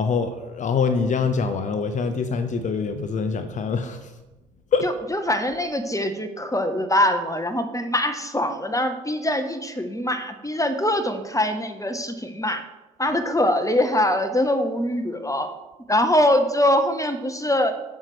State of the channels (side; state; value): both; normal; correlation 0.57